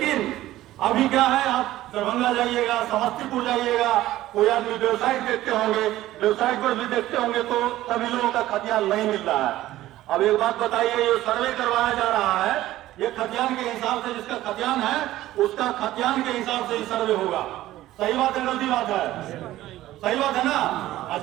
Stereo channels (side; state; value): left; quieter; 15.1 dB